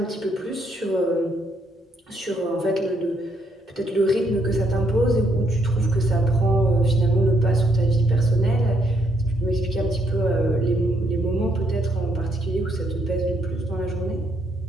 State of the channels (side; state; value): both; normal; correlation 0.73